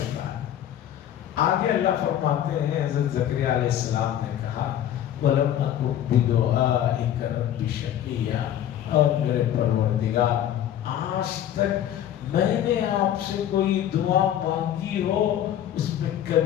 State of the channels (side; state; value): right; quieter; 11.0 dB